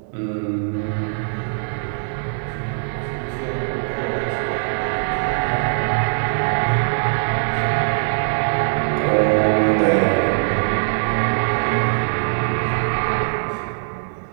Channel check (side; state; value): left; silent; 65 dB below the other